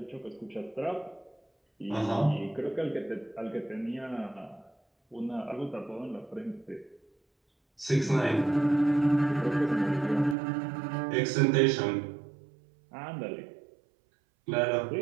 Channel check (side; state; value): left; drops out; at 10.4 s